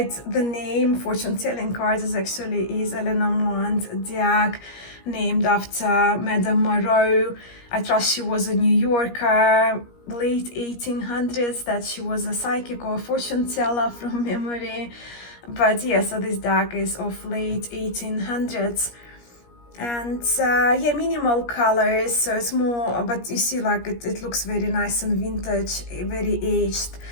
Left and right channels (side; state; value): right; late; 17 ms